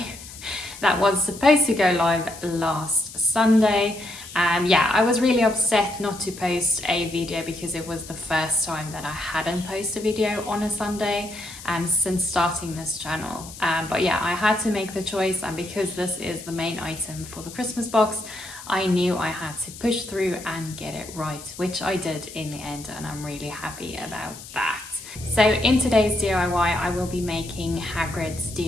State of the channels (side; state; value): left; noise; hiss, 15 dB below the sound